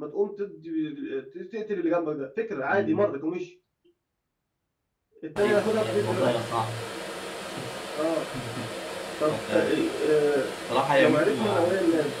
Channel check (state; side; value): identical; both; correlation 1.00